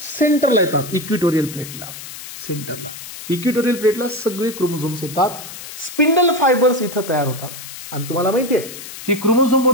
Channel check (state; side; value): noise; left; hiss, 12 dB below the sound